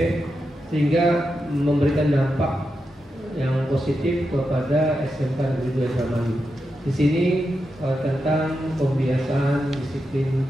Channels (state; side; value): normal; both; correlation 0.87